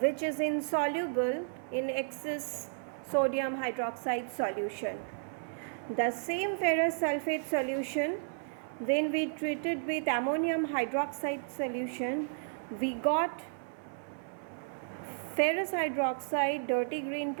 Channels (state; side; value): silent; left; 56 dB below the other